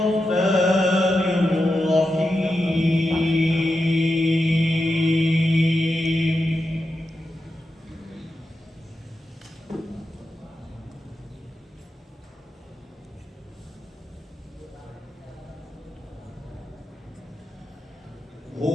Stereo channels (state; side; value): normal; both; correlation 0.89